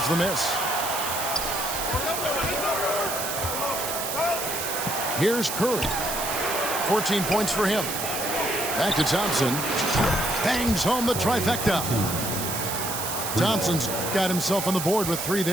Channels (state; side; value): noise; right; hiss, 4 dB below the sound